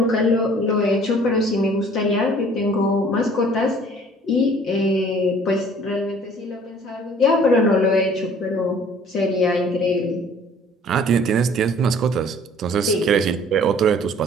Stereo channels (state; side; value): normal; both; correlation 0.53